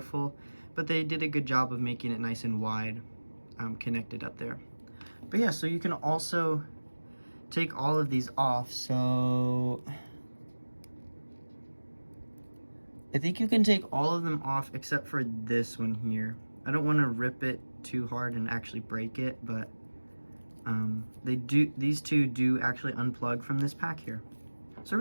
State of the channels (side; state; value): both; inverted; correlation -1.00